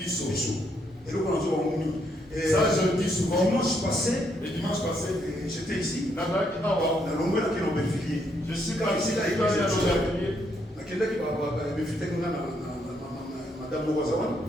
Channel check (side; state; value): both; normal; correlation 0.74